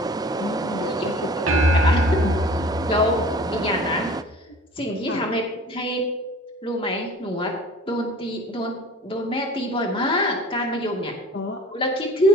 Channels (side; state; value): both; normal; correlation 0.45